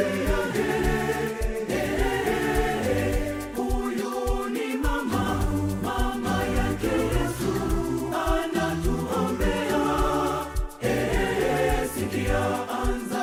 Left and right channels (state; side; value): identical; both; correlation 1.00